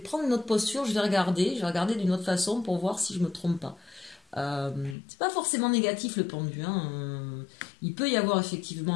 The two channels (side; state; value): right; drops out; at 5.0 s